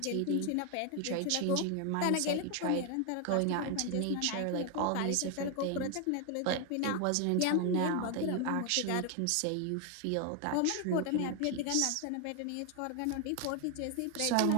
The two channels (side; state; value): both; different; correlation 0.01